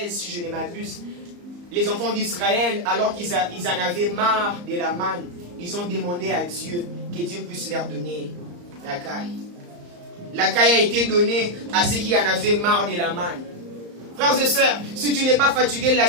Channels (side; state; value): left; late; 34 ms